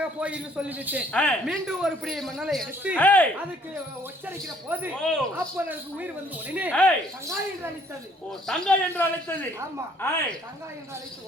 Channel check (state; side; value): normal; both; correlation 0.61